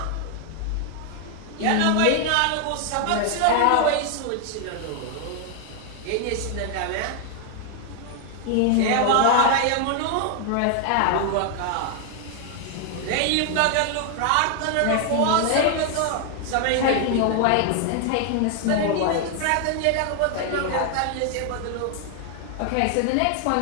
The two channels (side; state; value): both; different; correlation 0.00